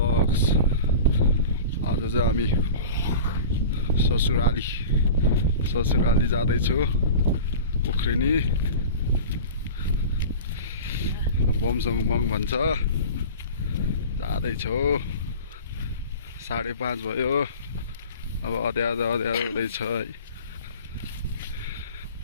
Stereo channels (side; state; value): both; inverted; correlation -0.36